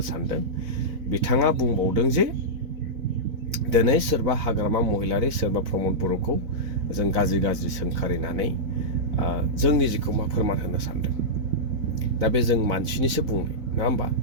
सानदों बिथाङा बुंबावदों जे दिनै सोरबा हाग्रामा महिलारि सोरबा प्रमद बर'खौ जों गाज्रि सोंखारिनानै जोंनि जिखौ मा फोरमान होनो सानदों दा बे जों मानसिनिसो बुंनाय नङा होमबा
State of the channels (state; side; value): late; left; 4.0 ms